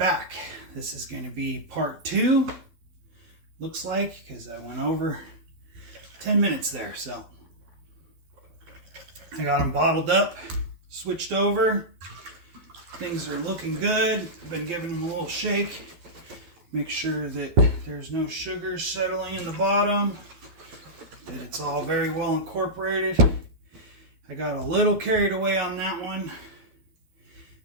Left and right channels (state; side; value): late; left; 12 ms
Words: This is going to be part 2, looks like, because I went over 10 minutes there. So I got them bottled up, switched over. Things are looking good. I've been giving them a little shake. Make sure that there's no sugar settling in the bottom, that it's all very well incorporated. I got a little carried away on that one.